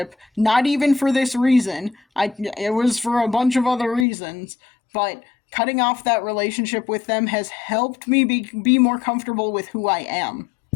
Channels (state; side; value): drops out; right; at 4.0 s